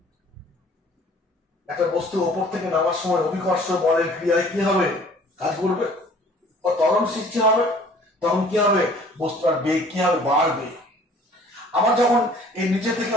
একটা বস্তু ওপর থেকে নামার সময় অভিকর্ষ বলের ক্রিয়ায় কি হবে, কাজ করবে, ও ত্বরণ সৃষ্টি হবে, তখন কি হবে, বস্তুটার বেগ কি হবে, বাড়বে। আবার যখন এই নিচে থেকে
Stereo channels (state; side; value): normal; both; correlation 0.53